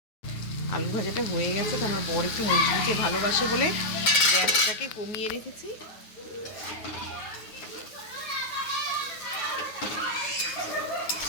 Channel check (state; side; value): late; right; 9.4 ms